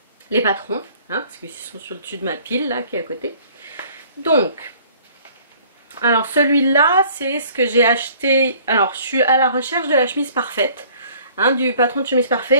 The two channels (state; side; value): inverted; both; correlation -0.54